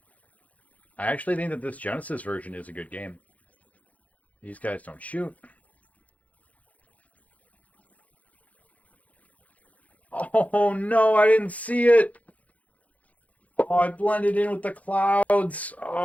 I actually think that this Genesis version is a good game. These guys don't shoot. Oh no, I didn't see it! Oh, I blended in with the clouds!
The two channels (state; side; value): late; right; 0.070 ms